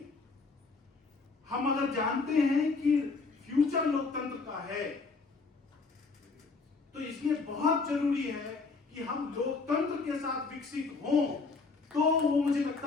हम अगर जानते हैं कि फ्यूचर लोकतंत्र का है, तो इसलिए बहुत जरूरी है कि हम लोकतंत्र के साथ विकसित हों, तो वो मुझे लगता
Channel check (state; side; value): quieter; right; 4.2 dB